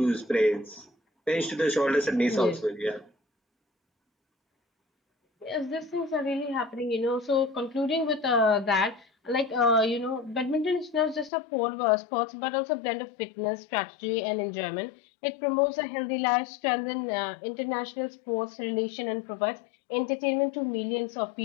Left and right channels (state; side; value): drops out; right; at 11.3 s